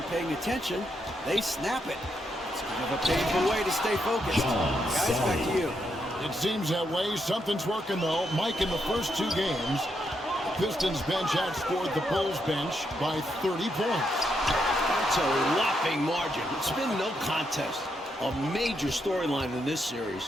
paying attention, they snap it. It's kind of a painful way to stay focused. Guys, back to you. It seems that way. Something's working, though. Mike, in the first 2 games, the Pistons bench outscored the Bulls bench by 30 points. That's a whopping margin. It's been no contest. A major storyline in this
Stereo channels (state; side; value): normal; both; correlation 0.80